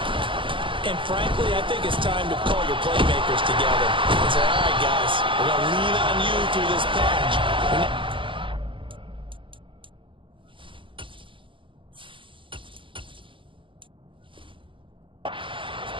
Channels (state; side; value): late; left; 0.25 ms